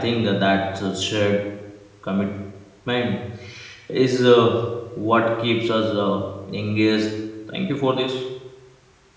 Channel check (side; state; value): both; identical; correlation 1.00